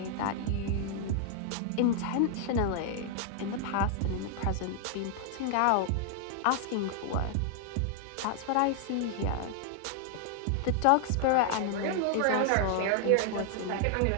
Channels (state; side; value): different; both; correlation 0.00